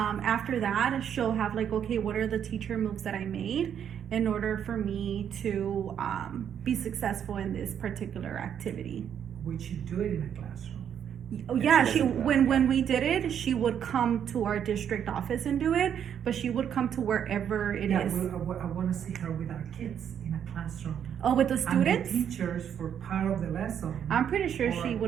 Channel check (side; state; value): left; quieter; 8.8 dB